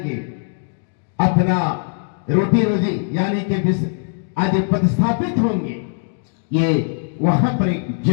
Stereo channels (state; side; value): silent; right; 66 dB below the other